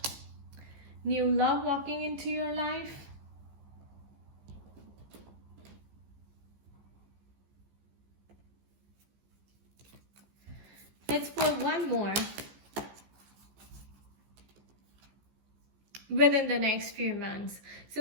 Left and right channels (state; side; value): late; left; 15 ms